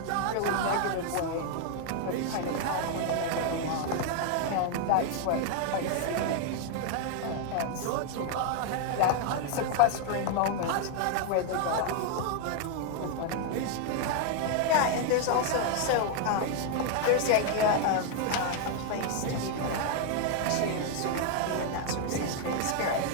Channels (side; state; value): both; different; correlation 0.00